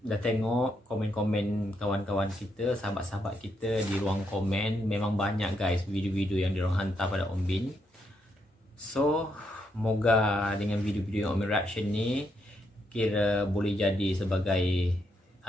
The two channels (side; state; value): both; normal; correlation 0.78